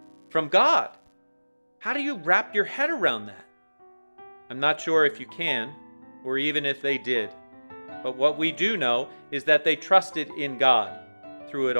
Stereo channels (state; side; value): inverted; both; correlation -1.00